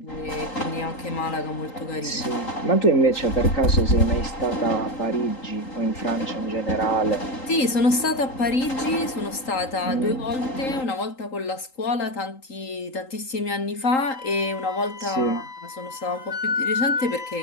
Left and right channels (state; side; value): late; right; 3.8 ms